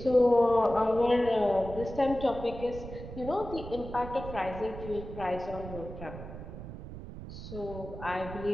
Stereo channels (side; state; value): right; noise; rumble, 11 dB below the sound